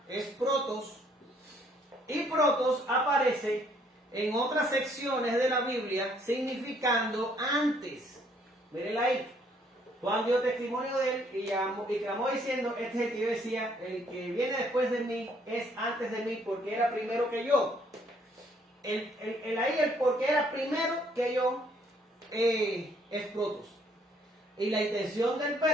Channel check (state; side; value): normal; both; correlation 0.65